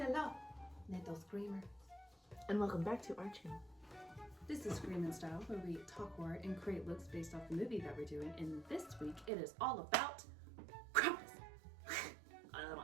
little screamer. And welcome back to our channel. This is Scream in Style, where we talk horror and create looks based off the movie that we're doing. And this week, it is all about Krampus.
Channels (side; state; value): left; drops out; at 9.3 s